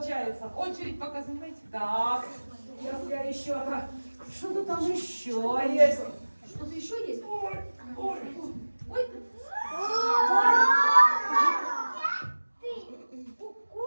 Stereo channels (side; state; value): both; inverted; correlation -1.00